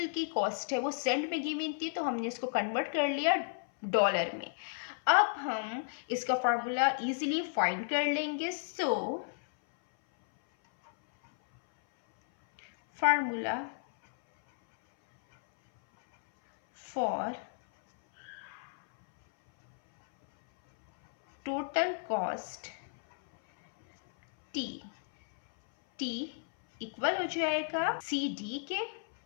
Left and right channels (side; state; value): right; silent; 56 dB below the other